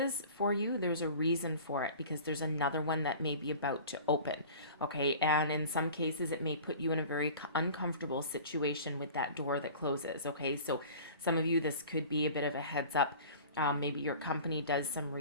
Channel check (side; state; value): both; inverted; correlation -0.41